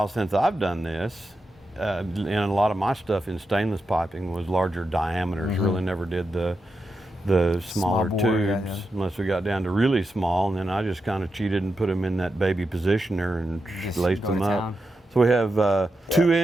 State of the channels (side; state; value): both; normal; correlation 0.87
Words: since I've done this. And a lot of my stuff in stainless piping was larger diameters. Really never did the smaller bore, tubes yeah. unless we got down to really small, and then I just kind of cheated and put them in that baby positioner and Just laced go them to up. town. So we have